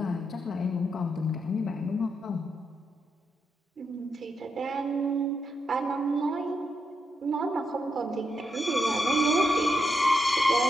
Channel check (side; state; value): both; normal; correlation 0.82